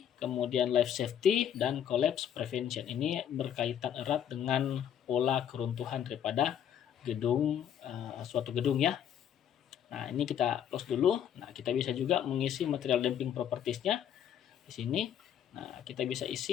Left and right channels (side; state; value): right; quieter; 9.4 dB